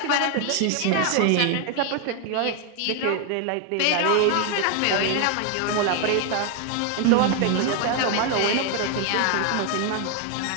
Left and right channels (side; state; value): both; different; correlation 0.01